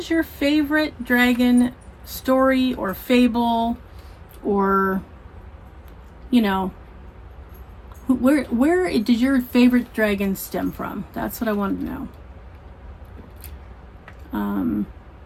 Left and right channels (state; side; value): identical; both; correlation 1.00